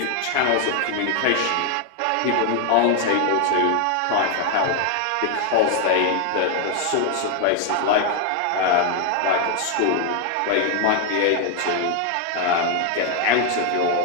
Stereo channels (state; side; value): different; both; correlation 0.00